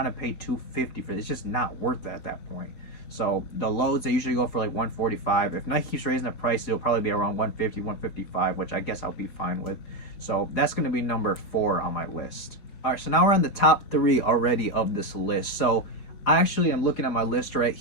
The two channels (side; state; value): right; late; 4.8 ms